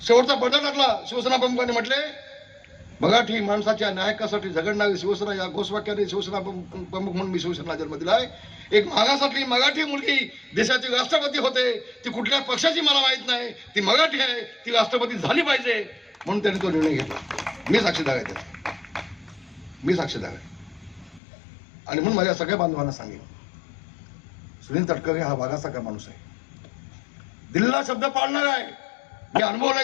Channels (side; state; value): right; drops out; at 21.2 s